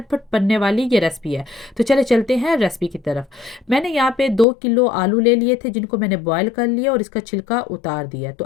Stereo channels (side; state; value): right; drops out; at 4.5 s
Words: बनने वाली ये रेसिपी है। तो चले चलते हैं रेसिपी की तरफ। मैंने यहाँ पे 2 किलो आलू ले लिए थे, जिनको मैंने बॉयल कर लिया और इसका छिलका उतार दिया। तो